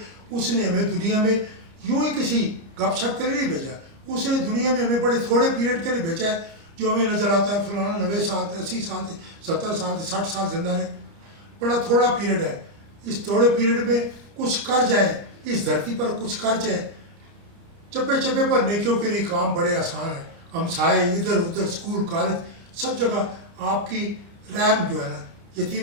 उसने हमें दुनिया में यूं ही किसी गपशप के लिए नहीं भेजा, उसने दुनिया में हमें बड़े थोड़े पीरियड के लिए भेजा है। जो हमें नज़र आता है फलाना 90 साल थे, 80 साल थे, 70 साल थे, 60 साल जिंदा रहे, बड़ा थोड़ा पीरियड है। इस थोड़े पीरियड में कुछ कर जाए, इस धरती पर कुछ कर जाए, चप्पे चप्पे पर नेकियों के लिए काम बड़े आसान है। हम साए इधर उधर स्कूल कॉलेज सब जगह आपकी रहम जो है ना,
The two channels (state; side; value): late; left; 30 ms